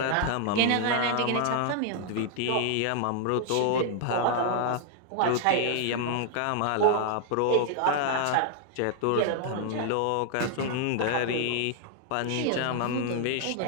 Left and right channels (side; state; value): both; different; correlation 0.00